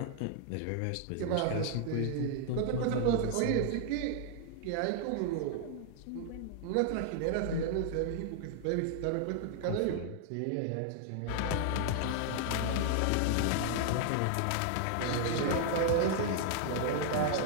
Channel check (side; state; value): both; different; correlation 0.00